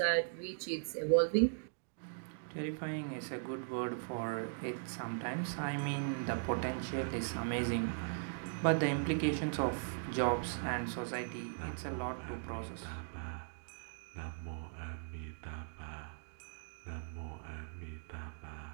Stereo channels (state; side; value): silent; left; digital silence